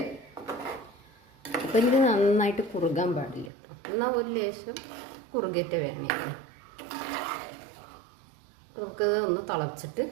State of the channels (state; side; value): drops out; left; at 3.5 s